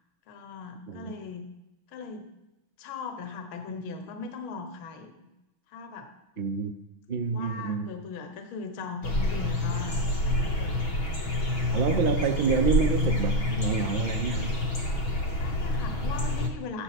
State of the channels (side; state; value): right; late; 6.2 ms